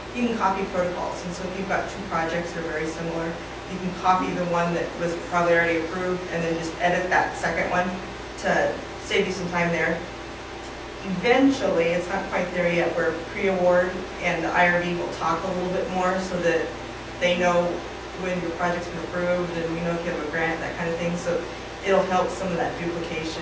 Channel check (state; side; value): identical; both; correlation 1.00